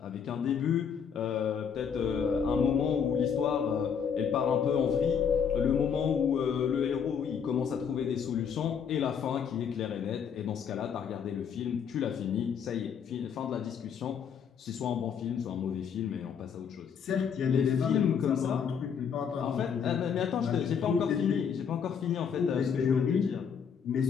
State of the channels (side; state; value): right; quieter; 7.2 dB